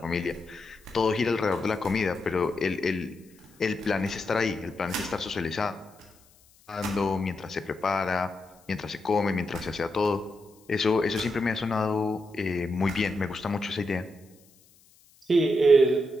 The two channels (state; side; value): noise; left; hiss, 30 dB below the sound